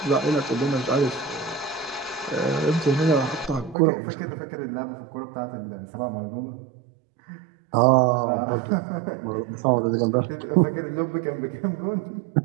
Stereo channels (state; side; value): drops out; left; at 3.8 s